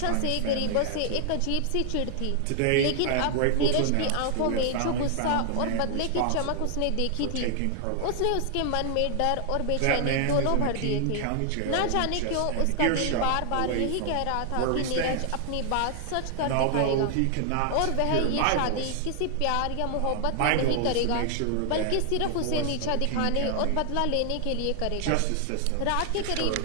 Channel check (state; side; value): different; both; correlation 0.00